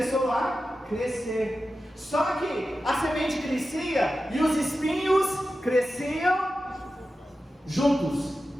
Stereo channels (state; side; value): normal; both; correlation 0.92